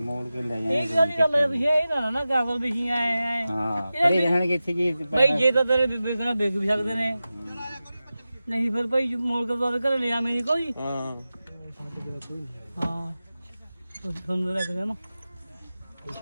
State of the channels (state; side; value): inverted; both; correlation -0.94